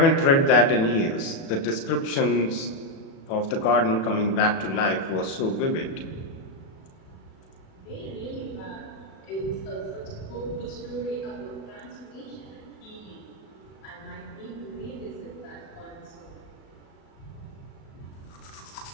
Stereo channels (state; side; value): late; right; 37 ms